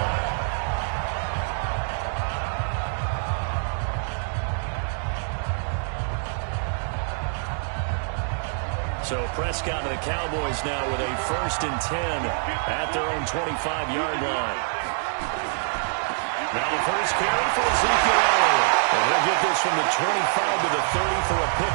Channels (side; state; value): left; silent; digital silence